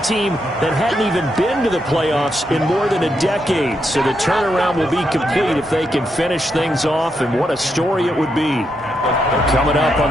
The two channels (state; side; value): normal; both; correlation 0.81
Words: team that hadn't even been to the playoffs in more than a decade. So the turnaround will be complete if they can finish things off, and what a story it would be. Coming up on